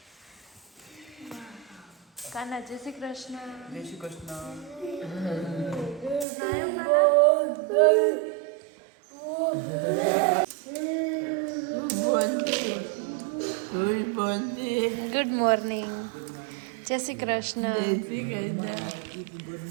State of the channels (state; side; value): drops out; left; at 6.2 s